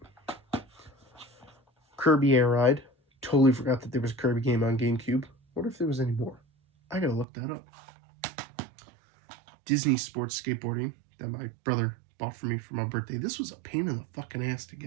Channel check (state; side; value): drops out; left; at 7.2 s